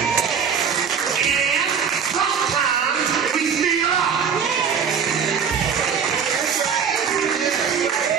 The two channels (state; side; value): quieter; left; 6.9 dB